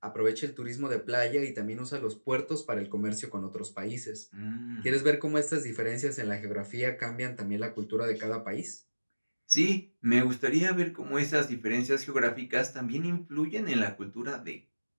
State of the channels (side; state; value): both; inverted; correlation -1.00